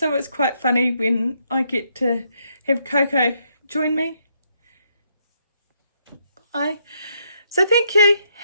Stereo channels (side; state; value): both; inverted; correlation -0.74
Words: it's quite funny when I get to have Coco join me. Bye. So thank you.